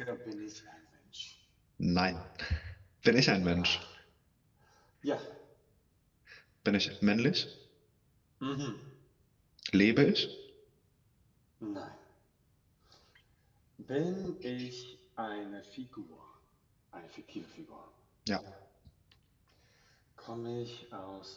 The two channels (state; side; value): identical; both; correlation 1.00